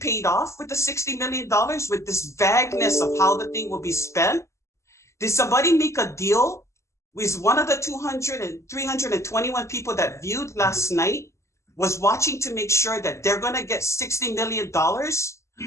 off with the $60 million with this vagueness of how the thing will be spent? Did somebody make a deal with one of the 321 people that viewed last night was watching to make sure that they're going to get $60 million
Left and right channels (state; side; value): late; right; 0.14 ms